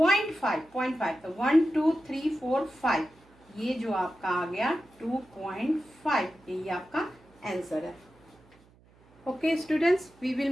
तो 1 2 3 4 5, ये जो आपका आ गया 2.5, यही आपका आंसर है। Okay students, we will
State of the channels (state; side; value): noise; right; hum, 29 dB below the sound